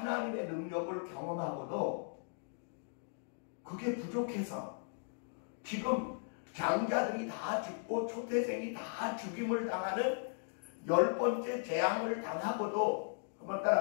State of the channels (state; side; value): silent; right; digital silence